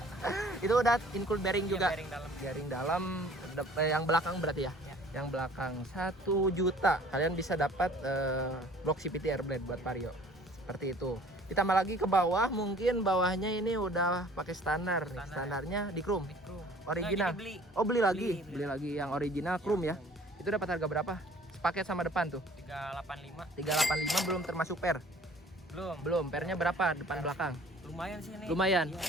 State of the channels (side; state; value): both; normal; correlation 0.53